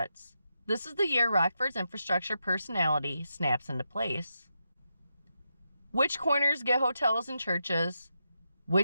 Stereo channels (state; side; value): inverted; both; correlation -0.86